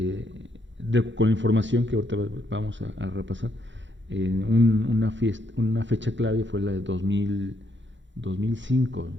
con la información que ahorita vamos a repasar, una fecha clave fue la de 2005 o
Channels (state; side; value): late; left; 0.54 ms